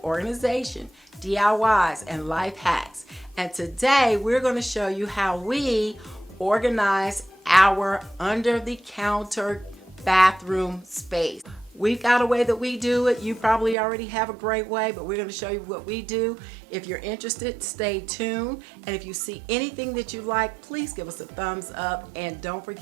DIYs, and life hacks. And today we're going to show you how we organize our under-the-counter bathroom space. We've got a way that we do it. You probably already have a great way, but we're going to show you what we do. If you're interested, stay tuned. And if you see anything that you like, please give us a thumbs up and don't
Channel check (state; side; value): drops out; left; at 13.8 s